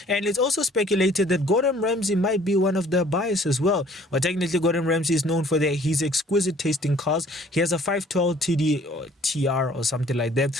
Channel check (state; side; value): normal; both; correlation 0.55